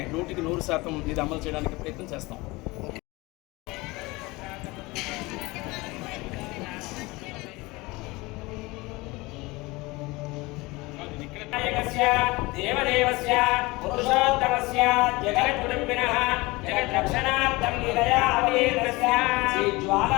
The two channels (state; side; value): quieter; right; 22.6 dB